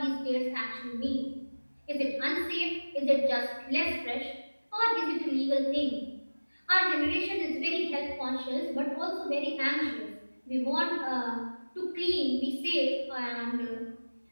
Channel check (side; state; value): both; inverted; correlation -1.00